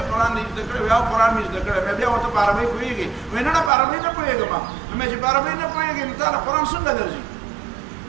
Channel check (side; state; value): left; drops out; at 3.7 s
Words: قرآن دې زده کړی؟ وایي او قرآن مې زده کړی. مې بیا ورته په عربۍ پوهېږې؟ وایي نه په عربۍ نه پوهېږم. نو مې چې په عربۍ نه پوهېږې نو تا له قرآن څنګه درځي؟